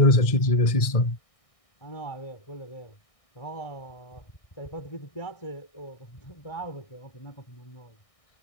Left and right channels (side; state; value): right; late; 1.6 ms